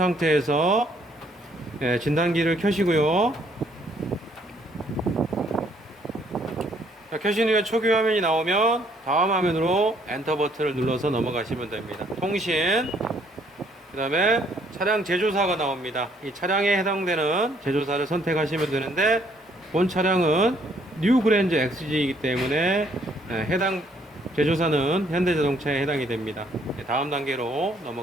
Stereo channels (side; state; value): both; normal; correlation 0.66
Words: 진단기를 켜시고요. 자, 켜신 후에 초기 화면이 나오면 다음 화면으로 엔터 버튼을 눌러서 넘어가시면 됩니다. 통신, 그 다음에 차량 제조사가 나옵니다. 이 차량에 해당되는 제조사를 선택하시면 되는데 본 차량은 뉴 그랜저 XG이기 때문에 해당 제조사는 현대자동차에 해당이 됩니다. 다음 단계로